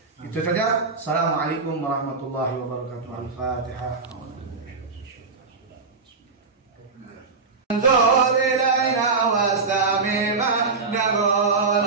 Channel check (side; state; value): left; quieter; 4.4 dB